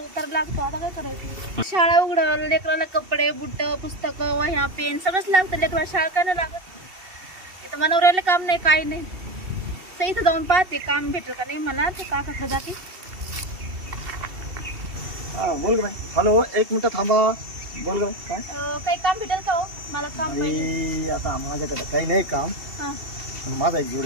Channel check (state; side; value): late; left; 2.7 ms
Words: लागतो, आता काय करायचं. शाळा उघडं, लेकराला कपडे बुट पुस्तकं वह्या पेन सगळंच लागतं. लेकराला शाळा काय नाही लागत. इथं मनवऱ्याला काम नाही काही नाही. तर इथं जाऊन पाहते काम भेटेल का नाही मला. ते काकाकडे जाते. हा बोल बाई. हॅलो, एक मिनिट थांबा. बोल ग काय काही काम भेटेल का हो? मला काम पाहिजे. आई, आता माझ्याकडे काही नाही काम, हा, पण माझा एक